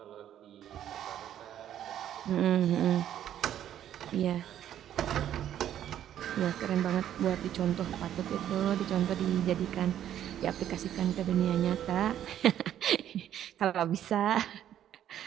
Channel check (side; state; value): left; quieter; 10.9 dB